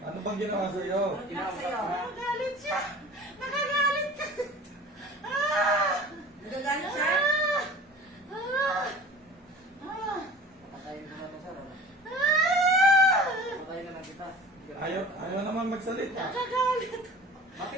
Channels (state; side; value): normal; both; correlation 0.42